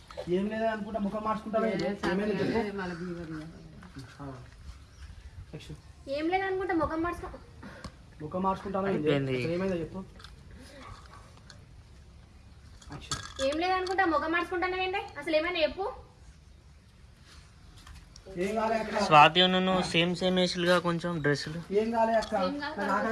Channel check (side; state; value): both; identical; correlation 1.00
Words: ఏం లేదనుకుంటా ముఖం మార్చుకుంటావేంటి? ఏమైంది చెప్పు. యాక్షన్. ఏం లేదు అనుకుంటా ముఖం మార్చుకో. ముఖం మార్చుకుంటాను అయిపోయింది. ఏమైందో చెప్పు. యాక్షన్. ఏం లేదు అనుకుంటా ముఖం మార్చుకుంటానండి. అసలు ఏమైనా చెప్పు. ఏం కాలే అక్క. స్వాతి నువ్వు సేమ్ వేసులుగా కొంచెం డ్రెస్సులు. ఏం కాలే అక్క.